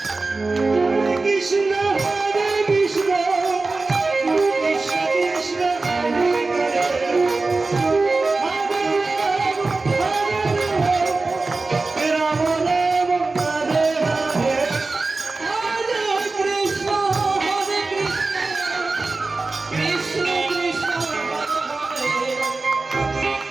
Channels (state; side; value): quieter; left; 3.6 dB